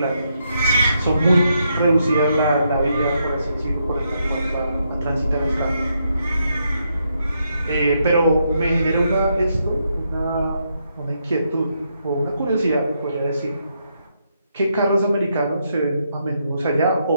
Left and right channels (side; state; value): both; inverted; correlation -0.79